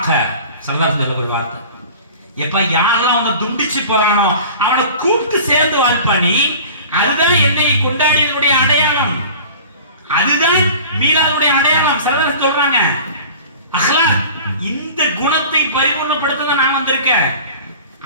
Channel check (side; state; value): both; inverted; correlation -0.41